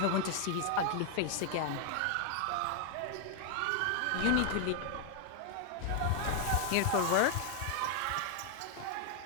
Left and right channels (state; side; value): different; both; correlation 0.00